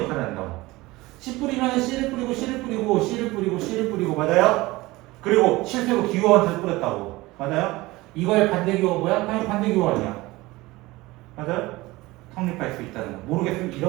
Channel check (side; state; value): left; quieter; 20.3 dB